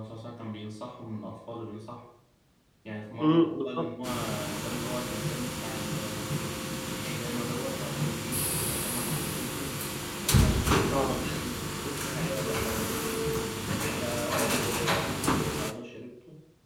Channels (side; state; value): both; identical; correlation 1.00